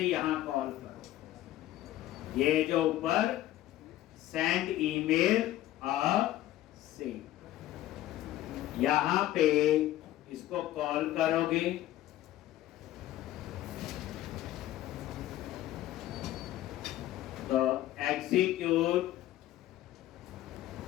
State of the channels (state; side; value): quieter; right; 14.2 dB